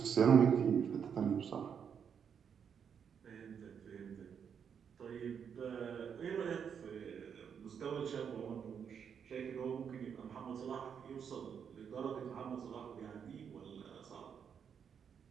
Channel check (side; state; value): left; quieter; 7.4 dB